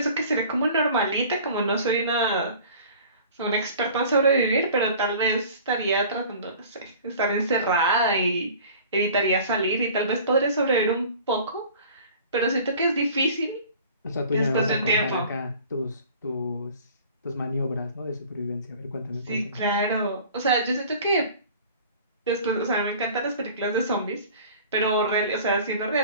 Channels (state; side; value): inverted; both; correlation -0.45